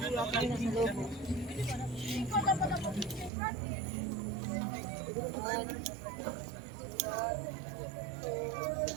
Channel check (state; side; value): drops out; left; at 3.3 s